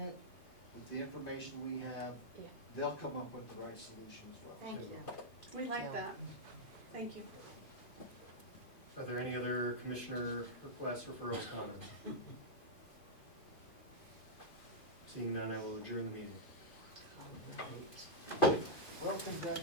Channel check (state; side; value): late; right; 2.5 ms